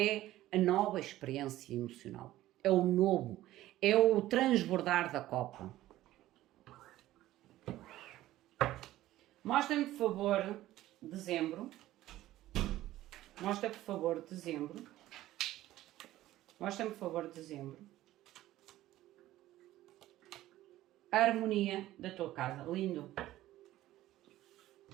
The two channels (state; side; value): quieter; left; 15.1 dB